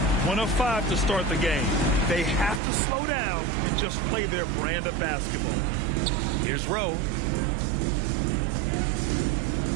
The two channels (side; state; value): left; drops out; at 2.6 s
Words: of 5 to start the game. They have to slow down and just play their brand of basketball. Here's Rowe.